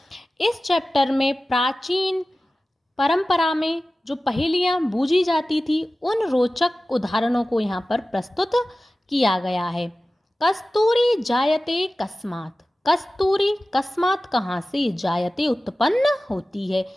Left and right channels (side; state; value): both; normal; correlation 0.96